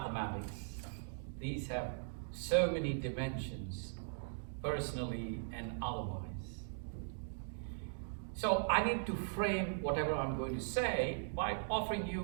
these have so many dimensions, personally and otherwise. So I need to frame whatever I'm going to say by offering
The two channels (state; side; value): silent; left; digital silence